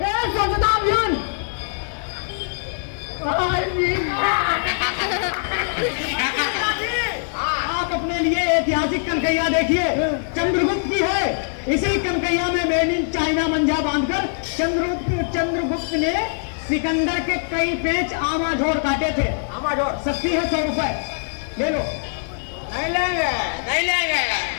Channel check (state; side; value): silent; right; 64 dB below the other